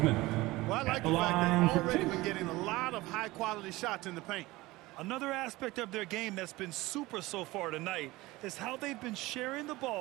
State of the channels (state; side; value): quieter; left; 19.8 dB